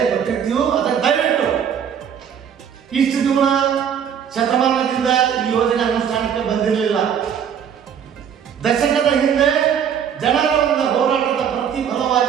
ಕೊಟ್ಟಿರ್ತೀವಿ. ಅದಕ್ಕೆ ದಯವಿಟ್ಟು ಇಷ್ಟು ದಿನ ಶತಮಾನದಿಂದ ಈ ಯೋಜನೆ ಅನುಷ್ಠಾನಕ್ಕೆ ಬಂದಿರಲಿಲ್ಲ. ದಶಕದ ಹಿಂದೆ ಜನರ ಒಂದು ಹೋರಾಟದ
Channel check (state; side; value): quieter; left; 8.2 dB